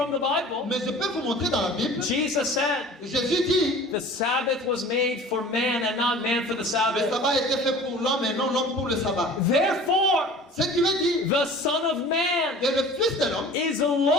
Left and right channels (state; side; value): normal; both; correlation 0.43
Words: the Bible. Mais je peux vous montrer dans la Bible. Jesus said, Jésus dit, the Sabbath was made for man and not man for the le Sabbath. sabbat a été fait pour l'homme et non l'homme pour le sabbat. Therefore, Ce qui veut dire the Son of Man que le Fils de l'homme is the